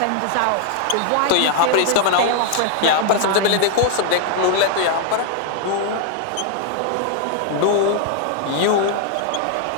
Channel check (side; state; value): both; different; correlation 0.00